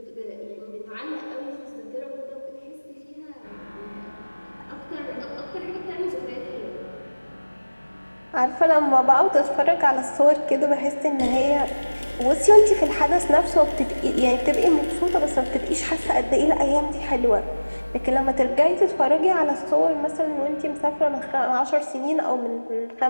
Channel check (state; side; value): inverted; both; correlation -1.00